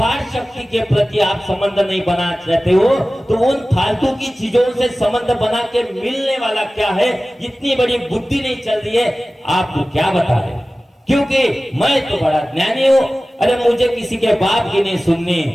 शक्ति के प्रति आप संबंध नहीं बना चाहते हो, तो उन फालतू की चीजों से संबंध बना के मिलने वाला क्या है? इतनी बड़ी बुद्धि नहीं चल रही है, आपको क्या बताए? क्योंकि मैं तो बड़ा ज्ञानी हूं, अरे मुझे किसी के बाप की नहीं सुननी,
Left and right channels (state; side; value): normal; both; correlation 0.97